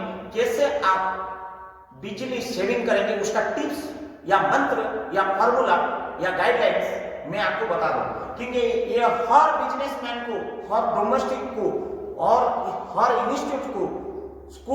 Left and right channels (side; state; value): both; identical; correlation 1.00